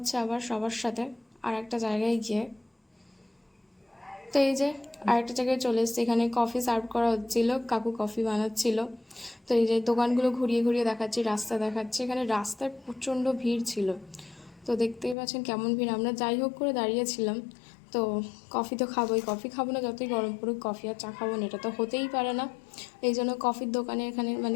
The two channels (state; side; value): drops out; right; at 15.2 s